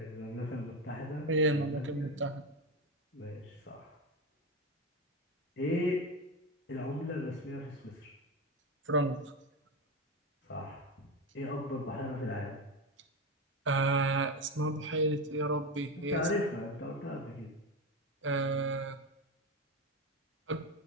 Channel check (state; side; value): normal; both; correlation 0.17